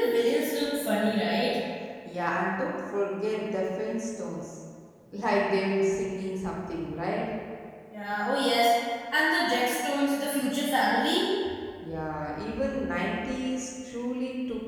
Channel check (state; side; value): identical; both; correlation 1.00